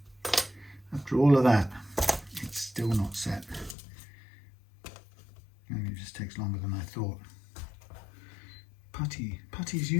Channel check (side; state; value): right; drops out; at 3.8 s